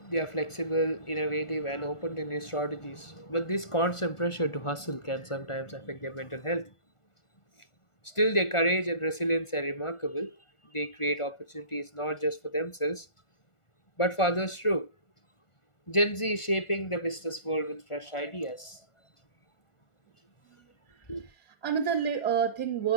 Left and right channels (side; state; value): right; late; 1.4 ms